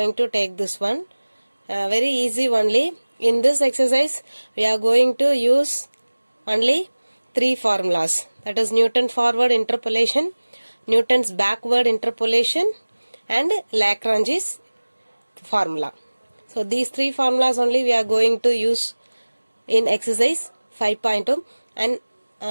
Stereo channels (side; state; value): both; inverted; correlation -1.00